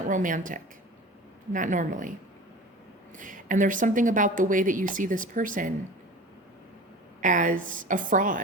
romantic. Not normally. And there's something about the way that you see this person as a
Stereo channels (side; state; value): both; normal; correlation 0.37